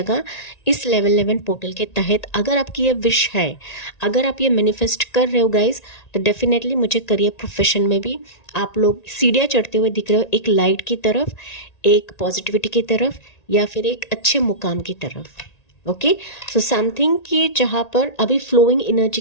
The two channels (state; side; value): late; right; 1.9 ms